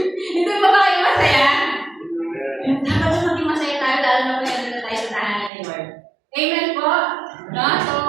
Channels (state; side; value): drops out; left; at 5.5 s